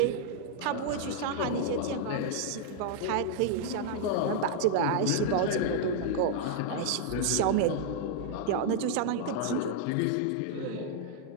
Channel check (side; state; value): both; different; correlation -0.01